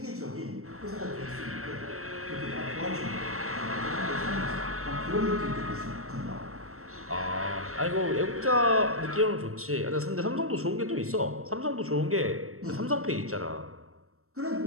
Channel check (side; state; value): left; late; 0.63 ms